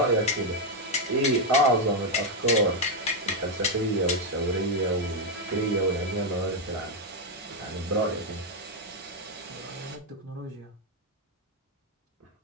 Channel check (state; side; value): normal; both; correlation 0.01